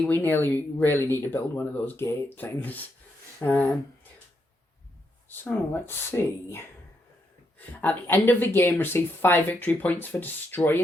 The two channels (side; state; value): both; normal; correlation 0.79